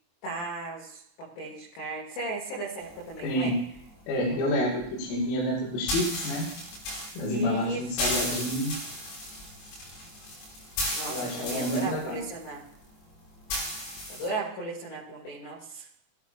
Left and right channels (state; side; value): late; right; 24 ms